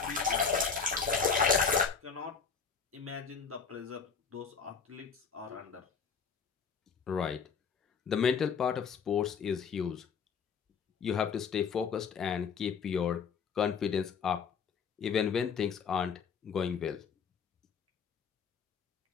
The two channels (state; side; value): quieter; right; 6.0 dB